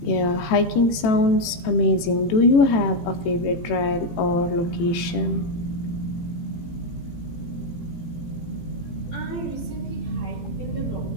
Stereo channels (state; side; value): late; right; 18 ms